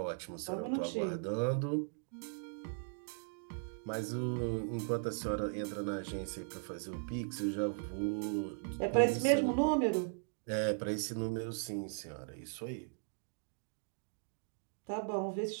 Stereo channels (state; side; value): silent; left; digital silence